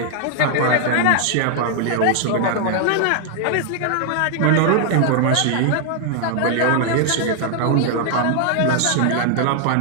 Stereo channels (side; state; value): both; different; correlation 0.00